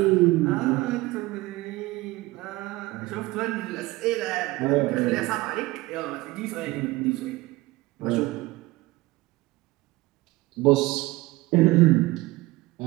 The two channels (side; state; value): left; quieter; 20.1 dB